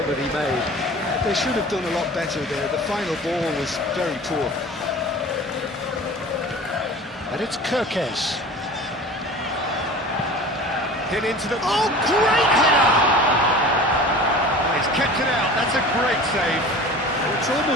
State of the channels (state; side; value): normal; both; correlation 0.40